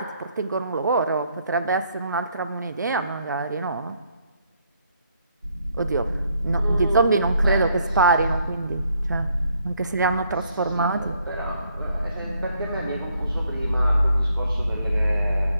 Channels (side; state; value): both; inverted; correlation -0.70